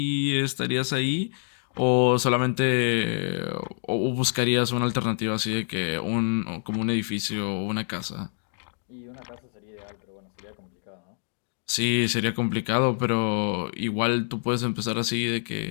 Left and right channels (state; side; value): silent; right; 58 dB below the other